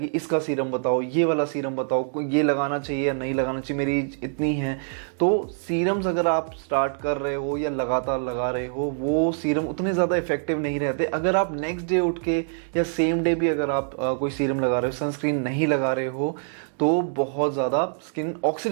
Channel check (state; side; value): silent; left; digital silence